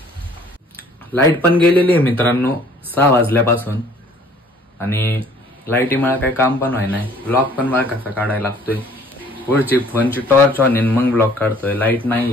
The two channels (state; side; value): normal; both; correlation 0.56